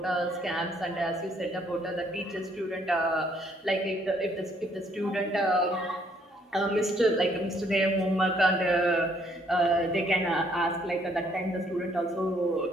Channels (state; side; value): normal; both; correlation 0.66